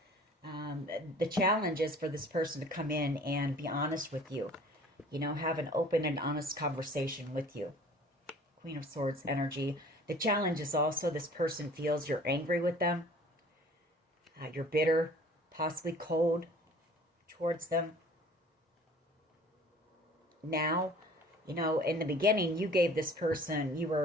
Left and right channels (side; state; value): both; normal; correlation 0.49